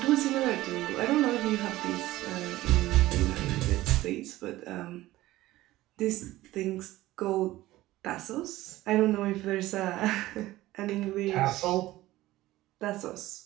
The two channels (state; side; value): quieter; left; 16.7 dB